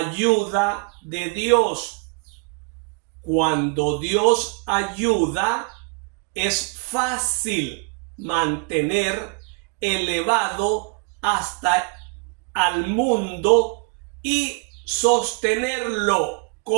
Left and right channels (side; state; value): left; quieter; 35.9 dB